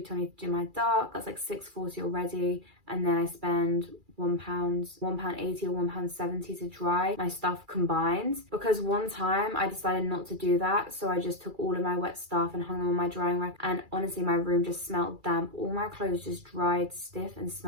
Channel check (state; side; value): late; left; 2.3 ms